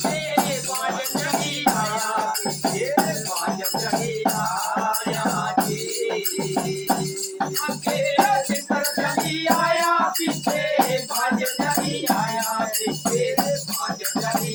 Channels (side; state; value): both; identical; correlation 1.00